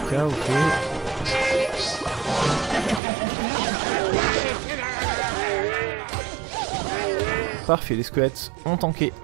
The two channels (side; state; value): left; drops out; at 3.0 s